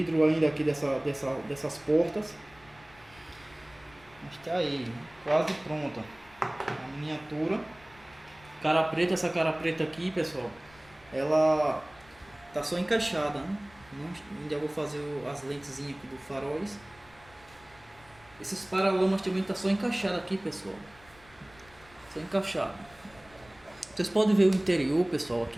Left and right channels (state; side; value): noise; left; rumble, 26 dB below the sound